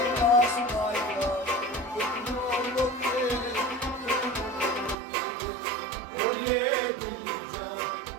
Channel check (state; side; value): drops out; left; at 5.0 s